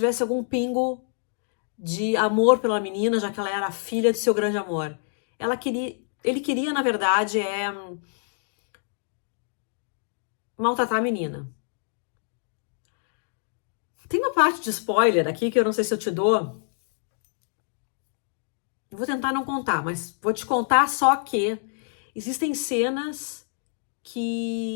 algum pingo de amor pela menina, já que ela era a filha de seu grande amor. Ele queria, na verdade, maltratar a menina. Tem uma parte de spoiler aqui que eu não sei se eu te dou, Eu vou tentar não contar, mas vou te contar só que existem cenas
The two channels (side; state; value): right; silent; digital silence